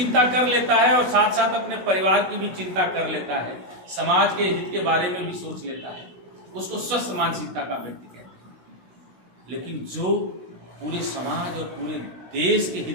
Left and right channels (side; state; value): left; late; 16 ms